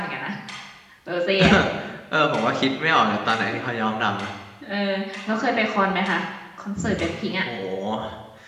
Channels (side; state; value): both; identical; correlation 1.00